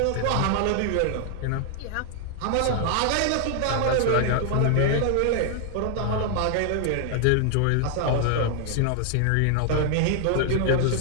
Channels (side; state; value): both; different; correlation 0.00